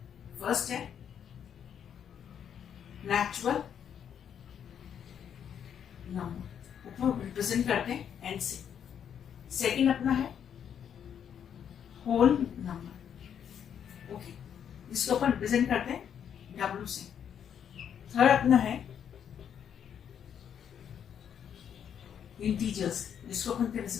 फर्स्ट है नेचुरल नंबर ऊपर रिप्रेजेंट करते हैं एन से। सेकंड अपना है होल नंबर ओके जिसको अपन रिप्रेजेंट करते हैं डब्ल्यू से। थर्ड अपना है इंटीजर्स जिसको अपन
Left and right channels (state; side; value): quieter; right; 8.5 dB